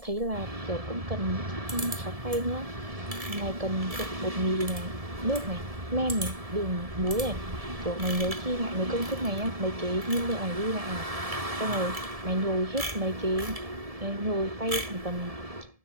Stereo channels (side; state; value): left; late; 1.7 ms